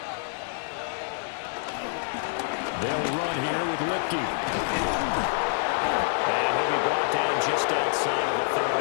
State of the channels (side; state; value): right; silent; digital silence